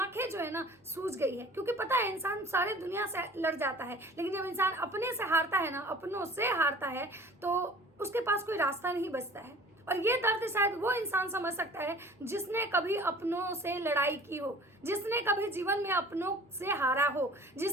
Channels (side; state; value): both; normal; correlation 0.46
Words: जो है ना सूज गई है। क्योंकि पता है, इंसान सारे दुनिया से लड़ जाता है, लेकिन जब इंसान अपने से हारता है ना, अपनों से हारता है, तो उसके पास कोई रास्ता नहीं बचता है। और ये दर्द शायद वो इंसान समझ सकता है जिसने कभी अपनों से लड़ाई की हो, जिसने कभी जीवन में अपनों से हारा हो,